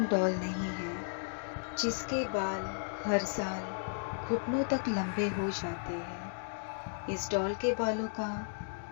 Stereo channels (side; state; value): right; silent; digital silence